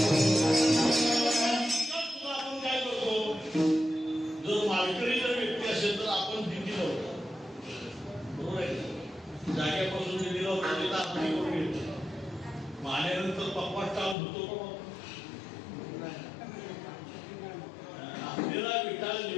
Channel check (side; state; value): right; drops out; at 14.2 s